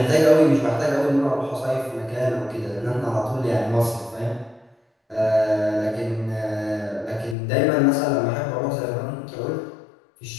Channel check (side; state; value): right; drops out; at 7.4 s